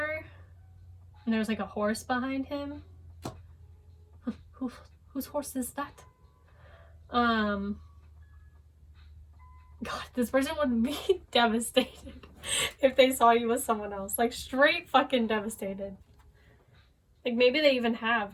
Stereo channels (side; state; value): both; identical; correlation 1.00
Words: and there's like a horse behind him. Whose horse is that? God, this person would be devastated if they saw you with someone else. Like straight fucking devastated. Like maybe they even